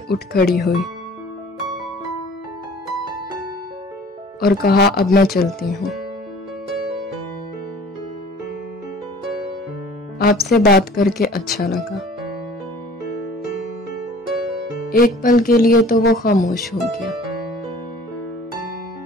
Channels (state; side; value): normal; both; correlation 0.49